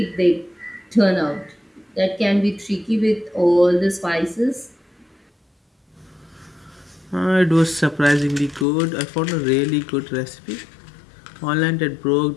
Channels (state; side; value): drops out; right; at 8.7 s